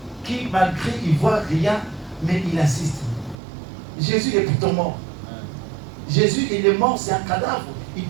qui, malgré, ils ne voient rien, mais ils assistent. Jésus est pourtant mort. Jésus, il est mort, c'est un cadavre. Il ne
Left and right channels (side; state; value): left; drops out; at 3.4 s